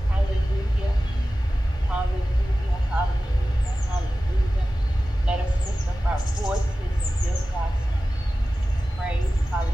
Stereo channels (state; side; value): normal; both; correlation 0.95